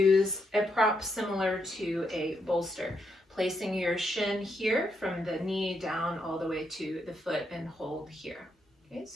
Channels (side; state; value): both; normal; correlation 0.79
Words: a prop similar to a bolster, placing your shin here from the knee down all the way to the foot and hold here. Okay,